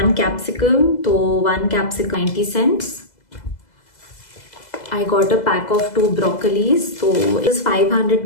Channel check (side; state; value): right; late; 2.0 ms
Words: capsicum. So 1 capsicum 90 cents. I got a pack of 2 broccolis. So it was 500